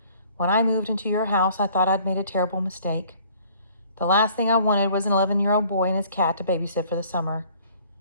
when I moved into your house, I thought I'd made a terrible mistake. The last thing I wanted was an 11-year-old boy and his cat to babysit for the summer.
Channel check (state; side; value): inverted; both; correlation -0.56